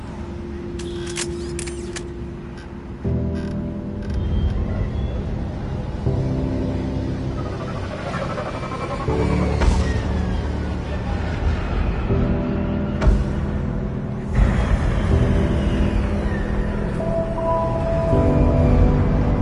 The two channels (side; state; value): both; identical; correlation 1.00